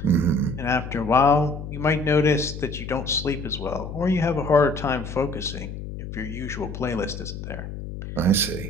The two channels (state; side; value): noise; left; hum, 9 dB below the sound